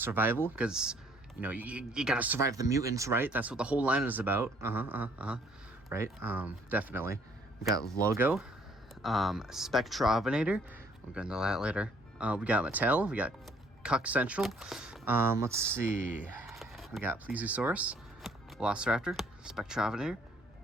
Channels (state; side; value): normal; both; correlation 0.62